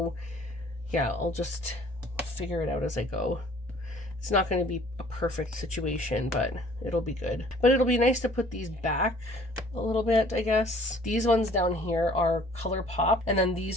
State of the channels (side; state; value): both; normal; correlation 0.54